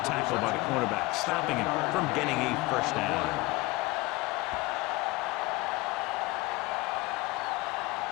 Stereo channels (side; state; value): right; quieter; 21.3 dB